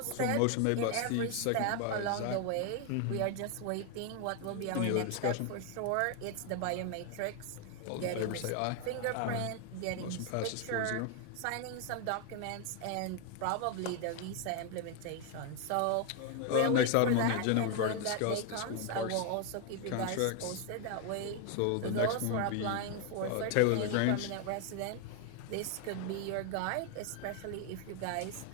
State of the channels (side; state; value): both; different; correlation 0.01